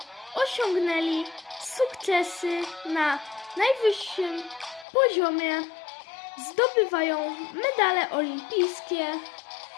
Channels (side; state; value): right; drops out; at 4.9 s